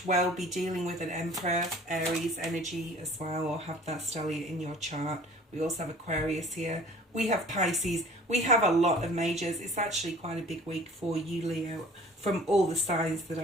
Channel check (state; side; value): normal; both; correlation 0.49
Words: well be dealing with an Emperor, Aries energy as well, or have that stellium in your chart. We also have Aquarius here. We have Pisces. We have a lot of majors. It's actually quite a big week for you, Leo, from all the signs that